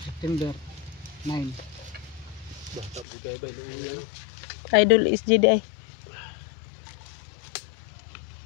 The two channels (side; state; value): right; drops out; at 3.1 s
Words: 9. Idol is Jedi.